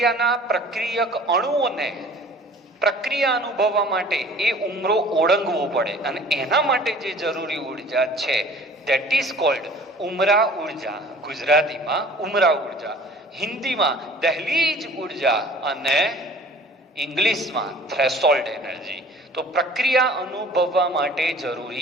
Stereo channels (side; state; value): both; normal; correlation 0.48